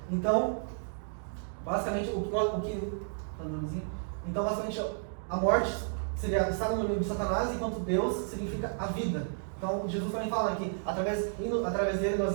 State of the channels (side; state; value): left; silent; digital silence